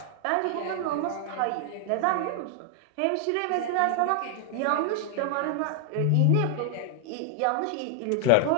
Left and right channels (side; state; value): both; different; correlation 0.00